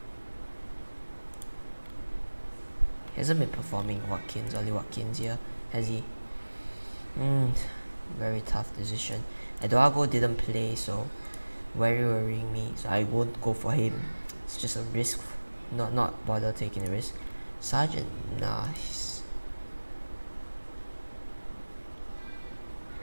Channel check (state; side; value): inverted; both; correlation -1.00